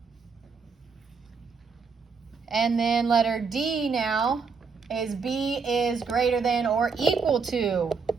And then letter D now is B is greater than or equal to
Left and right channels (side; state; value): left; quieter; 5.2 dB